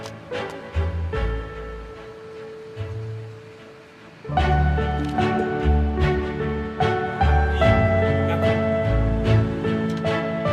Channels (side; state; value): both; identical; correlation 1.00